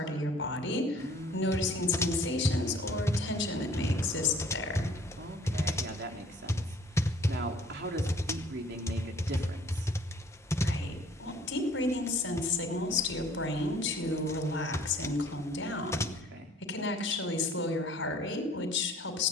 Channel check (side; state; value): both; normal; correlation 0.54